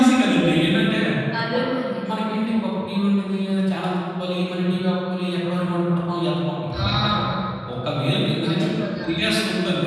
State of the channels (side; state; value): both; identical; correlation 1.00